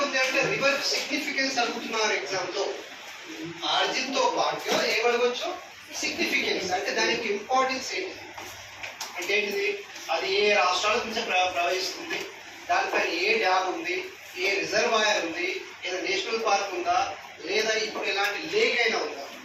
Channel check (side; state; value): both; identical; correlation 1.00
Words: ఉంది అంటే రివర్ సిగ్నిఫికెన్స్ అనుకుంటున్నారు ఎగ్జామ్ లో. ఆర్జిన్ తో పాటుగా ఏమడవచ్చు? సిగ్నిఫికెన్స్ అంటే దానికి ఇంపార్టెన్స్ ఏంటి అంటే ఏంటిది? అది ఏ రాష్ట్రాల నుంచి ప్రవహిస్తుంది, దానిపైన ఏ డ్యామ్ ఉంది, ఏ రిజర్వాయర్ ఉంది, ఏదో నేషనల్ పార్క్ ఉందా, లేదా ఇప్పుడు ఇలాంటి లేక్ అయినా ఉందా?